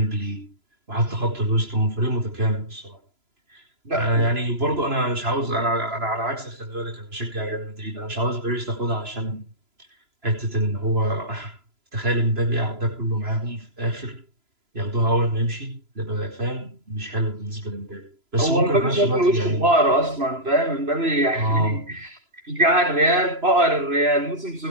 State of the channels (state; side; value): late; left; 3.0 ms